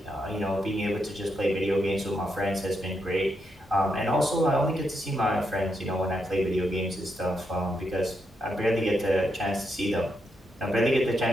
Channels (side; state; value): both; normal; correlation 0.81